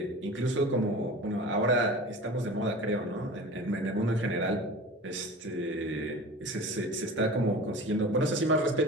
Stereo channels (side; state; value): both; normal; correlation 0.36